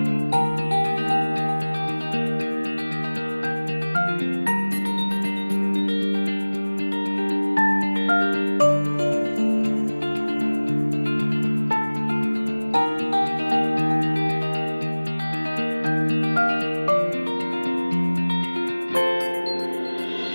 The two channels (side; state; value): both; inverted; correlation -1.00